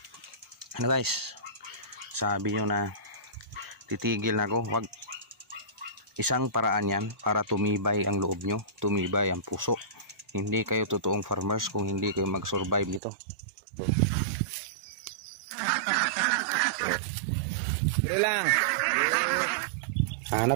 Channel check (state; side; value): drops out; left; at 13.0 s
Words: guys, sabi nyo na titigil na ako. Huwag. Isang paraan yan para tumibay ang loob nyo, tumibay ang puso. Hindi kayo totoong farmers kung hindi kayo mag-survive nito. Dali lang.